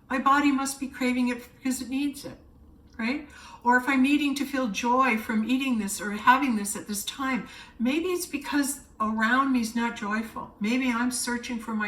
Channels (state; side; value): identical; both; correlation 1.00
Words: My body must be craving it because it needs it, right? Or if I'm needing to feel joy from eating this or having this at this time, maybe it's because around me is not joyful. Maybe I'm searching for